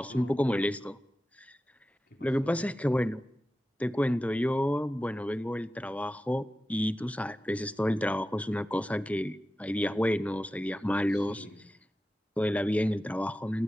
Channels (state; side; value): normal; both; correlation 0.94